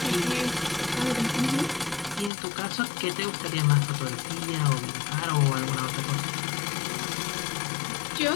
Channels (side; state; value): right; drops out; at 2.3 s